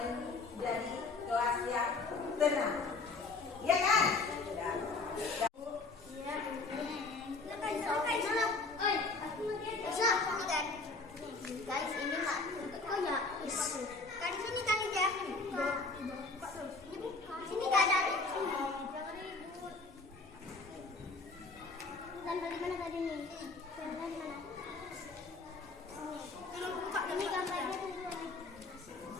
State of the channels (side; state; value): right; quieter; 3.7 dB